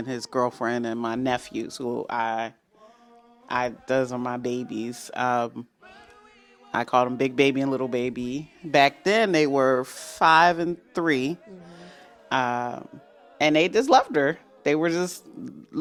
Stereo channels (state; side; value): identical; both; correlation 1.00